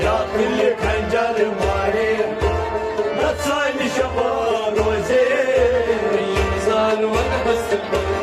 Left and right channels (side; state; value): both; identical; correlation 1.00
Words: يا كل خنجر ماري نتسان شبا روزي ينزال والحس